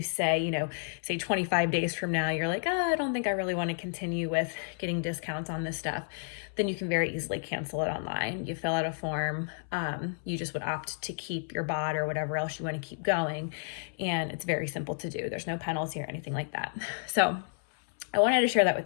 say 25 days from now, you're like, I don't think I really want to continue with getting discounts on this stuff. Then you can very easily cancel it online. You fill out a form. You just would opt to keep your bod or whatever else you want to keep going. And it's very simple to do. There's no penalty or anything like that. So I wanted to share that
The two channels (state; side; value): silent; right; 57 dB below the other